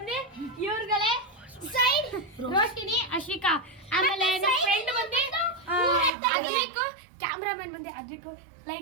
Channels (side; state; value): left; drops out; at 6.1 s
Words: ಇವ್ರುಗಳೇ ಸೈಡ್ ರೋಶಿನಿ ಅಶಿಕಾ, ಆಮೇಲೆ ನಮ್ಮ ಫ್ರೆಂಡ್ ಬಂದು ಅಜಿಕು, ಕ್ಯಾಮ್ರಾಮನ್ ಬಂದು ಅಜಿಕು.